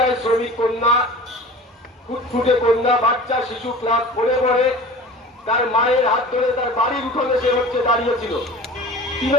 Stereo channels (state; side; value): normal; both; correlation 0.39